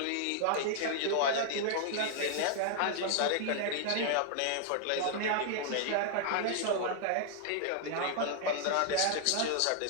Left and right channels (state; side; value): different; both; correlation 0.00